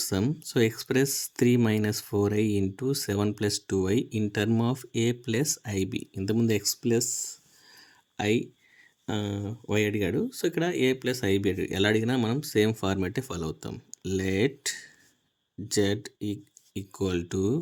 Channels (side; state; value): both; identical; correlation 1.00